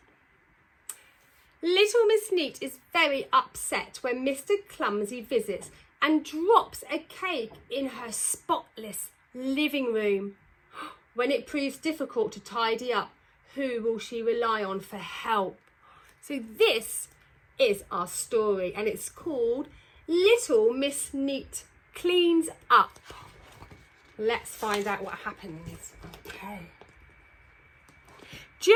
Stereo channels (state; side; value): identical; both; correlation 1.00